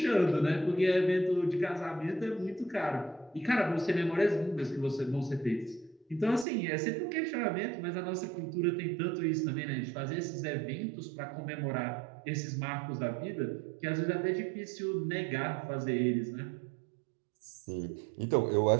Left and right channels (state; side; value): drops out; left; at 6.5 s